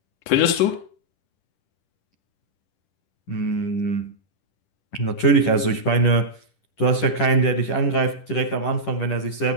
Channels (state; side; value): late; right; 10 ms